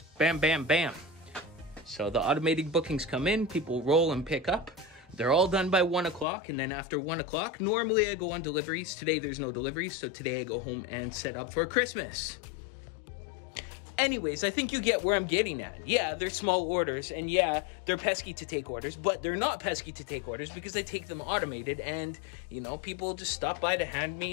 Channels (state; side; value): drops out; right; at 6.2 s